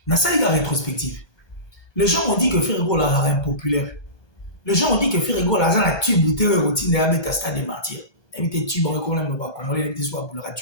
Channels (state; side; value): late; right; 1.2 ms